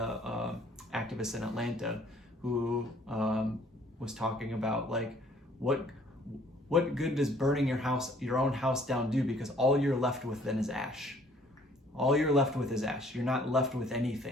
activist in Atlanta who was talking about like what good does burning your own house down do, because all you're left with then is ash. All you're left with is ash. You're not left with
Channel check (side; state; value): both; normal; correlation 0.59